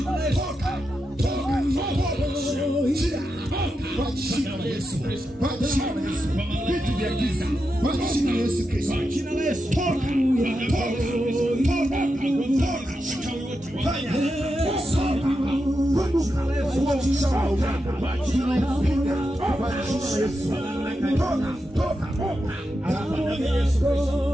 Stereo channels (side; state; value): both; normal; correlation 0.87